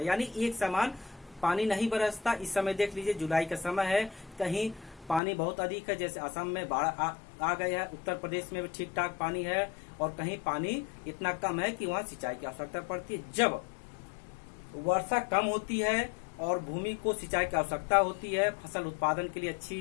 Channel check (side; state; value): right; drops out; at 5.2 s